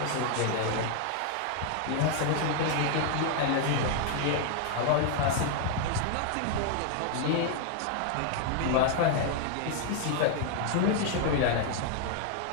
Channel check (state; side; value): different; both; correlation 0.00